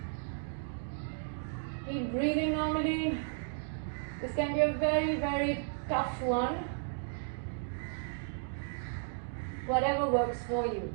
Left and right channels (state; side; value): silent; left; digital silence